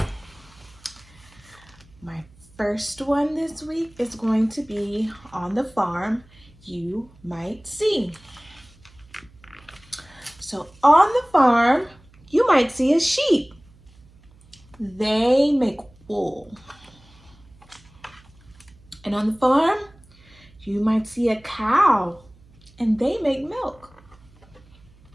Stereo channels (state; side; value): noise; right; hum, 27 dB below the sound